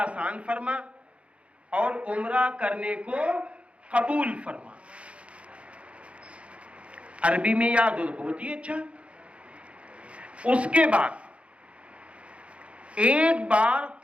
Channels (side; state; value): left; late; 0.062 ms